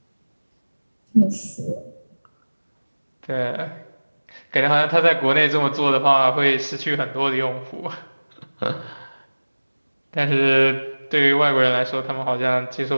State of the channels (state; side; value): inverted; both; correlation -1.00